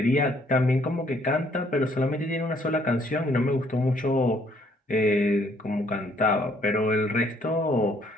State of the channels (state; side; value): normal; both; correlation 0.65